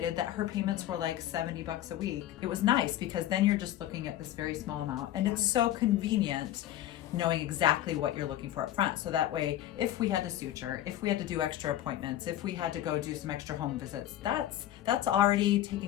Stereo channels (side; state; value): right; quieter; 13.0 dB